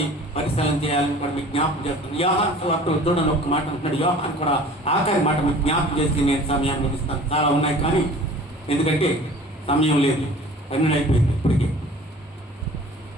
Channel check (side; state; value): both; normal; correlation 0.46